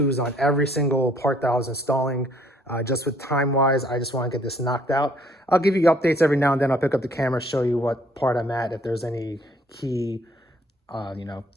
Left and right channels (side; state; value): both; normal; correlation 0.62